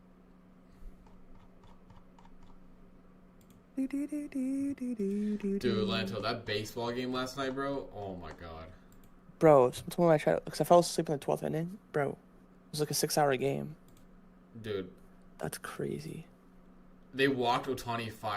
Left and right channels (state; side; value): identical; both; correlation 1.00